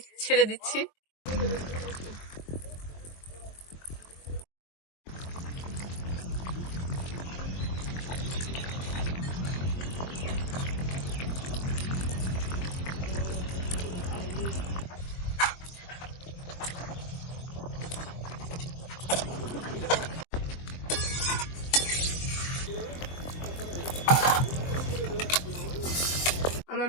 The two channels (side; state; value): right; late; 23 ms